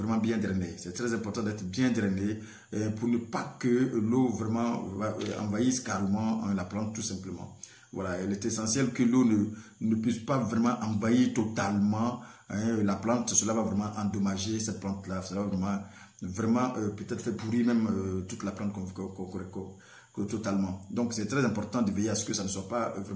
bien drainé. C'est très important d'être bien drainé pour ne pas que l'eau vraiment envahisse carrément la plante tout simplement. Voilà, il est essentiel que l'eau ne puisse pas vraiment envahir totalement la plante. Cela va vraiment endommager cette plante-là. Cela va vraiment peut-être faire pourrir même toute la plante totalement. Donc c'est très important de veiller à ce que ça ne soit pas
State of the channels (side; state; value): both; identical; correlation 1.00